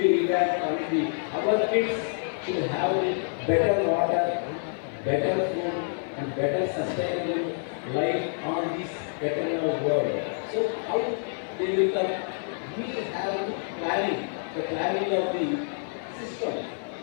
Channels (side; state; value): right; silent; 60 dB below the other